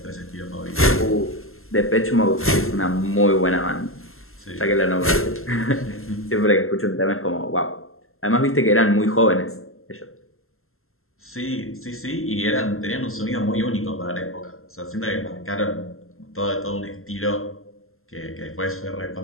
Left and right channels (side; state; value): right; late; 0.62 ms